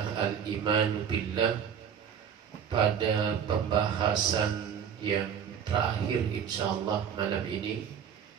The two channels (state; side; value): quieter; left; 8.0 dB